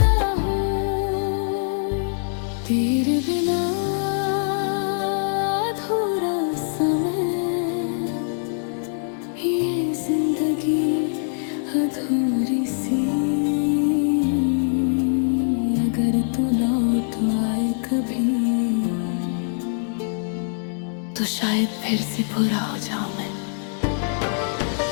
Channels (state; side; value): silent; right; digital silence